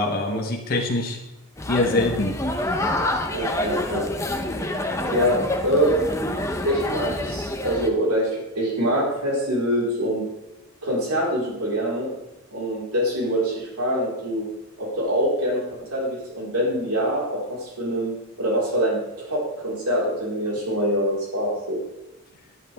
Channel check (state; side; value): normal; both; correlation 0.07